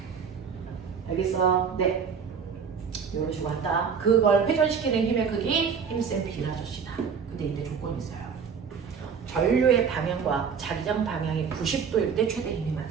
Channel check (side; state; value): left; quieter; 6.4 dB